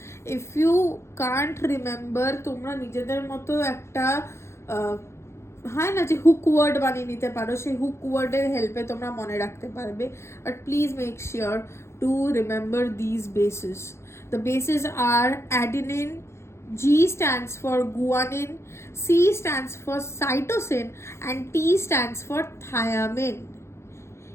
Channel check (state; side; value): late; right; 0.13 ms